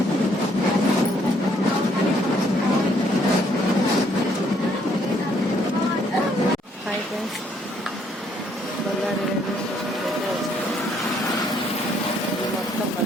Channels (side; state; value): both; normal; correlation 0.68